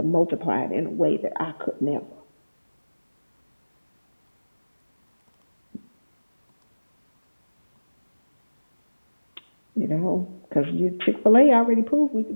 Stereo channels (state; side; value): inverted; both; correlation -1.00